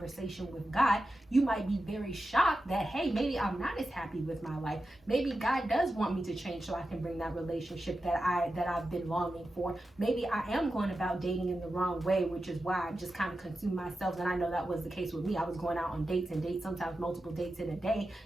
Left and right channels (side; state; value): both; normal; correlation 0.91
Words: with God, you might be very shocked that, hey, maybe I'm not as happy with my life. Maybe God does want me to change so I can bring that relationship that I've been longing for. Maybe I am going about dating in the wrong way, which is why I just kind of consume myself. And I know that was the case with me. I was going out on dates, sometimes multiple dates in a day,